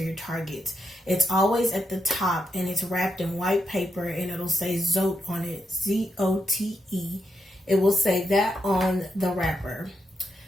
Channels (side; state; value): both; normal; correlation 0.83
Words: Targets. It's always at the top and it's wrapped in white paper and it'll say Zote on it, Z-O-T-E. It will say that on the wrapper.